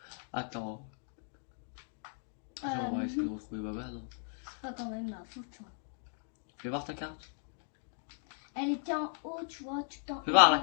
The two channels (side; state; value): right; silent; 53 dB below the other